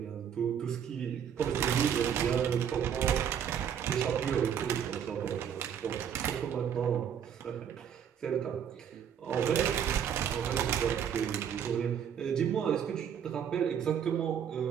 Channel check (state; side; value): quieter; left; 8.5 dB